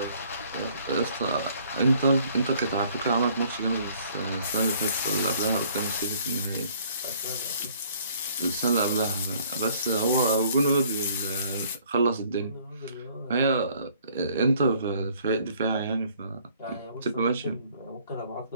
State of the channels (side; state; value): both; inverted; correlation -0.60